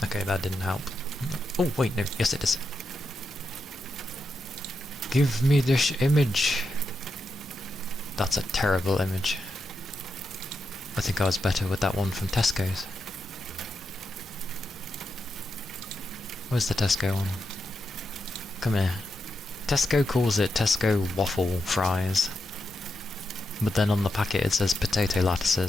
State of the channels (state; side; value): normal; both; correlation 0.86